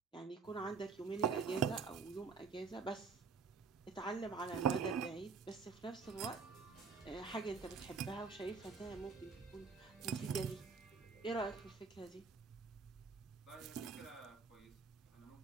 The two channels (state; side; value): quieter; left; 5.1 dB